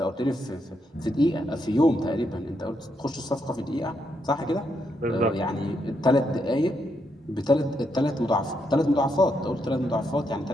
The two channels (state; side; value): normal; both; correlation 0.79